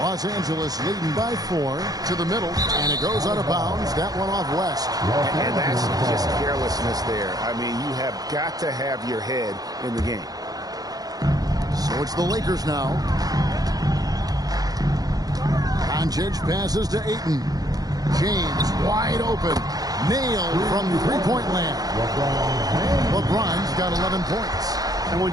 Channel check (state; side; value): late; left; 0.18 ms